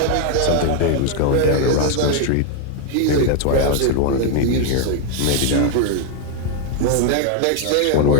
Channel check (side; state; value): both; different; correlation 0.00